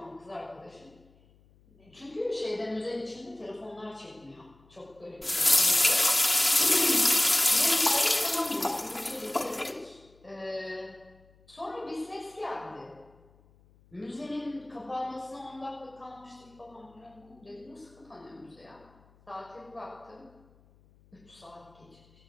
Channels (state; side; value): noise; left; hum, 29 dB below the sound